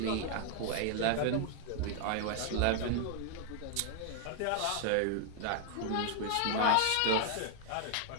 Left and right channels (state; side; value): different; both; correlation 0.00